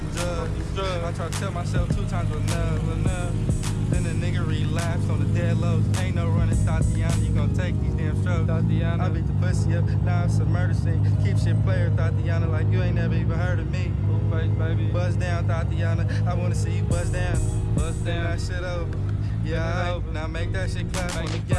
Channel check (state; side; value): identical; both; correlation 1.00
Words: drugs. I tried to tell myself 2 times enough. Then the nigga relapsed on the dead lows. Ain't no running, Tatiana. You gon' take these damn strokes. Tatiana. I beat the pussy up, now it's a murder scene. Keep shit player, Tatiana, like you ain't never even heard of me. Full face, baby. Buzz down, Tatiana. I wanna see you buzz down. Buzz down. That shit over. Yeah, over. Now make that shit clap on the